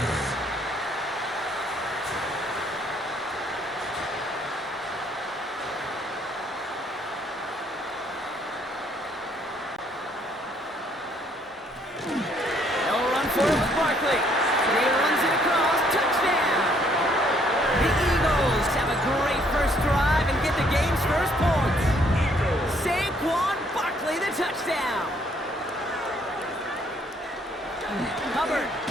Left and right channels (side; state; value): both; normal; correlation 0.66